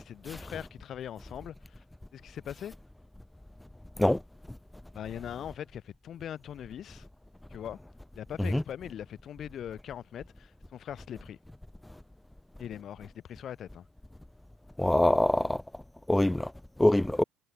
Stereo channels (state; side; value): normal; both; correlation 0.98